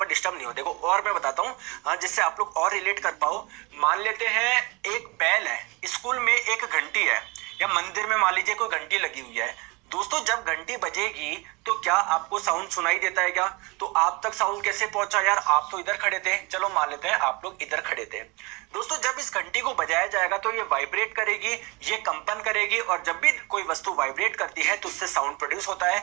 डिस्टर्ब नहीं हो। देखो और मैं बताता हूँ, हाँ, जिससे आप लोग और रिलेट कर पाओ। मान लेते हैं एक बैल है, स्कूल में एक घंटी है, या मंदिर में मान लीजिए कोई घंटी लगी हुई है। दोस्तों जब घंटी बजेगी तो क्या आपको साउंड सुनाई देता है क्या? तो आप तक साउंड कैसे पहुंचा यार? आप तो इधर खड़े थे, चलो मान लेते हैं आप लोग इधर खड़े थे। दोस्तों जब इस घंटी को बजाया जाएगा तो ये वाइब्रेट करेगी, ये कंपन करेगी, और जब भी कोई वस्तु वाइब्रेट करती है तो उससे साउंड प्रोड्यूस होता है।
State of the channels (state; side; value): quieter; left; 26.7 dB